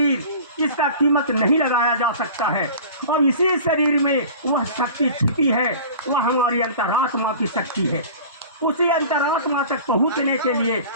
इसका कीमत नहीं लगाया जा सकता है। और इसी शरीर में वह शक्ति छिपी है, वह हमारी अंतरात्मा की शक्ति है। उसी अंतरात्मा तक पहुँचने के लिए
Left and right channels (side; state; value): both; inverted; correlation -0.40